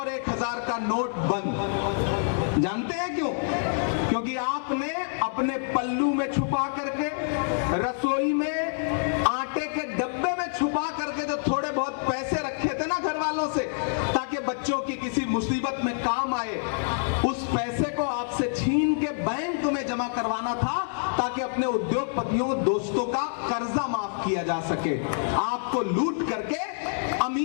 1000 का नोट बंद। जानते हैं क्यों? क्योंकि आपने अपने पल्लू में छुपा करके, रसोई में आटे के डब्बे में छुपा करके जो थोड़े बहुत पैसे रखे थे ना घर वालों से, ताकि बच्चों की किसी मुसीबत में काम आए, उस पैसे को आपसे छीन के बैंक में जमा करवाना था, ताकि अपने उद्योगपतियों दोस्तों का कर्जा माफ किया जा सके, आपको लूट करके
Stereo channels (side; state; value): right; silent; 60 dB below the other